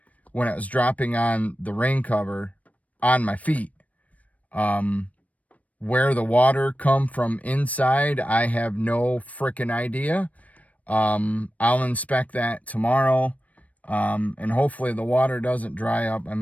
when it was dropping on the rain cover on my feet. Where the water come from inside, I have no freaking idea. I'll inspect that tomorrow. And hopefully the water doesn't dry up. I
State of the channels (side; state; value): right; late; 0.069 ms